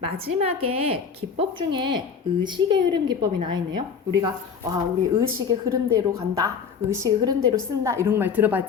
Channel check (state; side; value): quieter; right; 6.4 dB